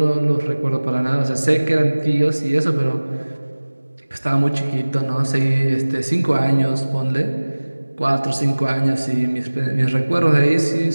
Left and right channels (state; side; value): inverted; both; correlation -1.00